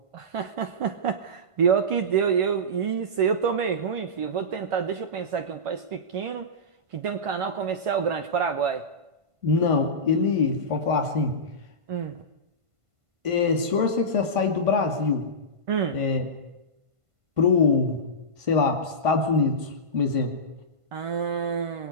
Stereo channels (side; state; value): left; late; 1.5 ms